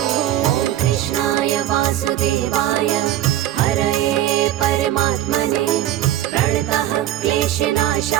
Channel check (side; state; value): left; quieter; 12.8 dB